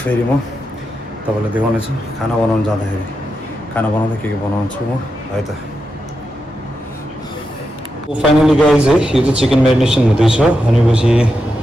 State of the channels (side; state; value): both; normal; correlation 0.87